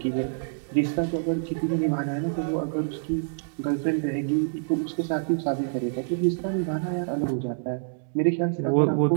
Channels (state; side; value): silent; left; digital silence